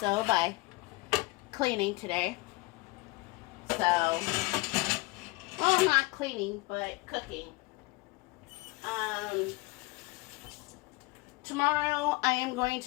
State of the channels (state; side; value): quieter; right; 24.0 dB